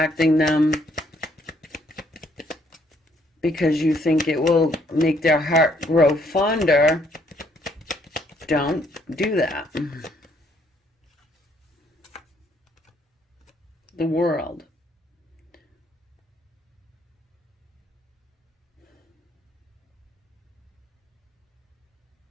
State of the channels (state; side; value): normal; both; correlation 0.68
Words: them because you think it will make their heart grow fonder, don't do that. The World.